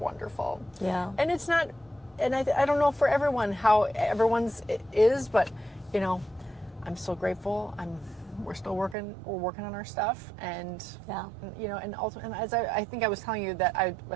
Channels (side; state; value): left; drops out; at 9.0 s